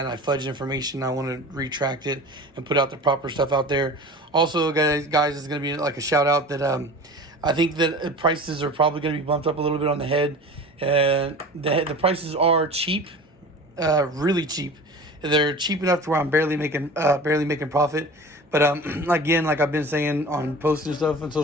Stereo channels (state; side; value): normal; both; correlation 0.37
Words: I fudge information, I want to retract it and put out the proper stuff out there. Also, guys, it's going to be like a shout out that I think that prices are probably going to be bumped up a little bit on the head. The prices are cheap, really cheap. They're cheap enough to where I'm barely making profit. But again, like I've been saying on posts and stuff on